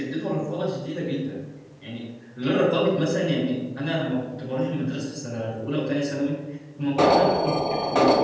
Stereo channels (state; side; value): identical; both; correlation 1.00